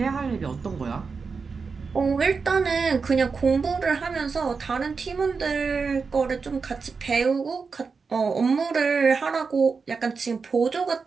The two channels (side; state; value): left; quieter; 5.0 dB